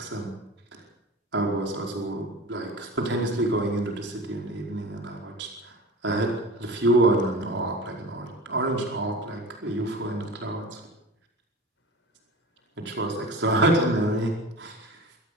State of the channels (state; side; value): normal; both; correlation 0.35